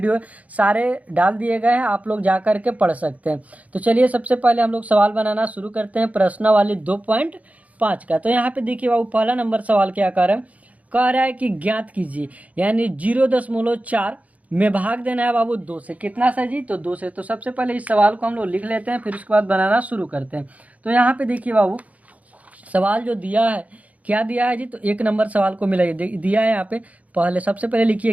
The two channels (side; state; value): left; late; 0.070 ms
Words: सारे डाल दिए गए हैं, आप लोग जा करके पढ़ सकते हैं। तो चलिए सबसे पहले हम लोग सवाल बनाना शुरू करते हैं प्रश्नावली 2.5 का। तो यहाँ पे देखिए बाबू, पहला नंबर सवाल क्या कह रहा है कि ज्ञात कीजिए, यानी 0.4 में भाग देना है बाबू 2 से। कितना सा जी? तो 2 से। तो सबसे पहले इस सवाल को हम लोग लिख लेते हैं, फिर उसके बाद बनाना शुरू करते हैं। तो यहाँ पे देखिए बाबू, सवाल जो दिया है, क्या दिया है जी? तो 1 नंबर सवाल को मिलाइए, दिया है यहाँ पे। पहले सबसे पहले लिखिए